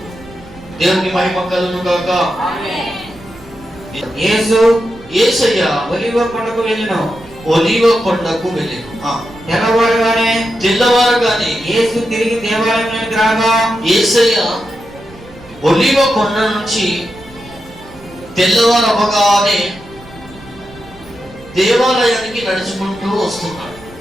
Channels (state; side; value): noise; right; rumble, 22 dB below the sound